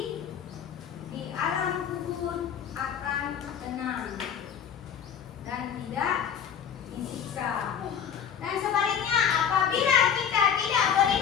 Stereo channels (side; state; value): right; quieter; 8.0 dB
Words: di alam kubur akan tenang dan tidak disiksa. Dan sebaliknya, apabila kita tidak